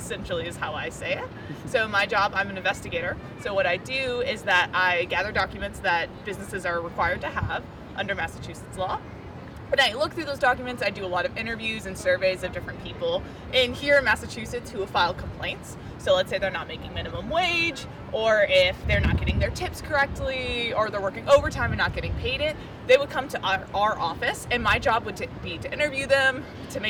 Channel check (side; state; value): both; identical; correlation 1.00